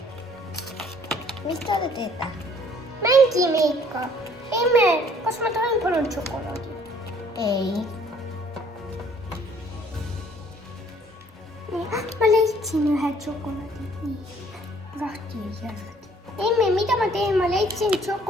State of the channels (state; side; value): normal; both; correlation 0.59